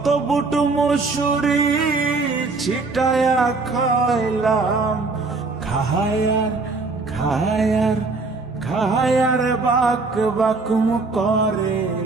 বুট মুসুরি ছিটায়া খাইলাম, খায়ার খায়ার খায়ার বাক বাকুম করে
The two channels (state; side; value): quieter; left; 3.8 dB